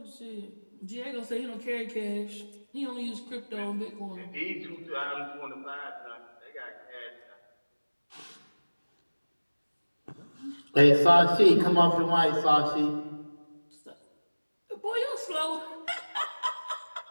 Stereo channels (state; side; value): inverted; both; correlation -1.00